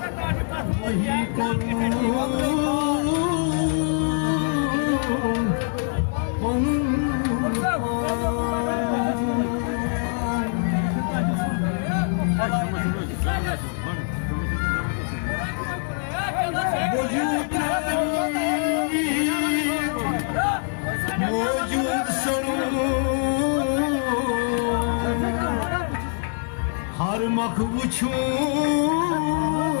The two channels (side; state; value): right; silent; 63 dB below the other